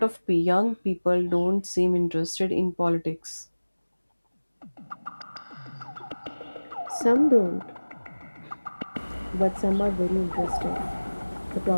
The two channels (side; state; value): both; inverted; correlation -1.00